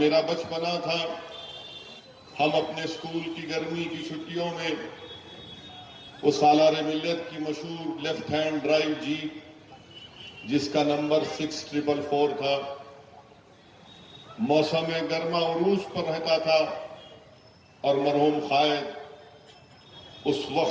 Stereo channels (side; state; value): both; identical; correlation 1.00